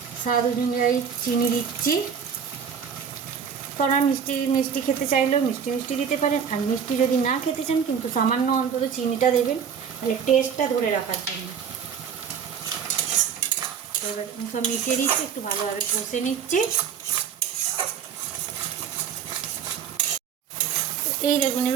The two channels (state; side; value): quieter; left; 7.3 dB